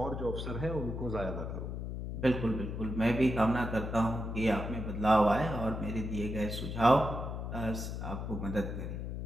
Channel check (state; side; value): noise; left; hum, 5 dB below the sound